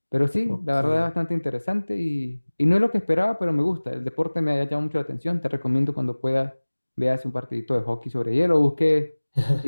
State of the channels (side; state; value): both; inverted; correlation -1.00